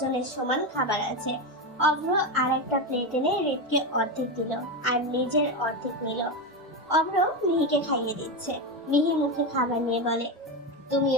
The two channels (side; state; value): both; normal; correlation 0.14